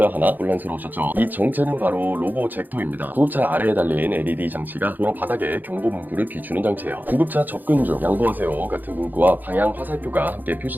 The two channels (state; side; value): late; left; 0.086 ms